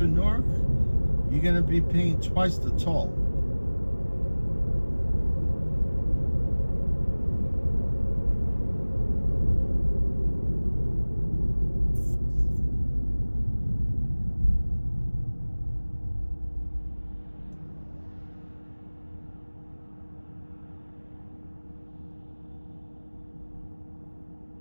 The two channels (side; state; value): both; inverted; correlation -1.00